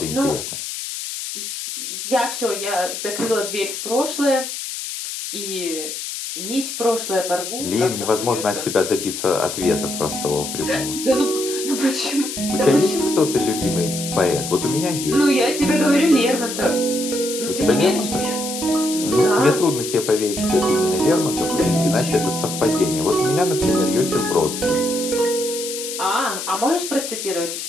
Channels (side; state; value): left; noise; hiss, 6 dB below the sound